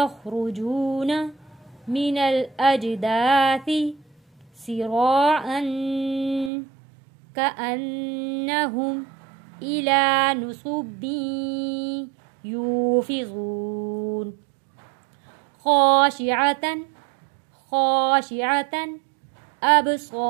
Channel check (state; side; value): drops out; left; at 6.5 s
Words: من الأجداث سراعا كأنهم إلى نصب يوفضون خاشعة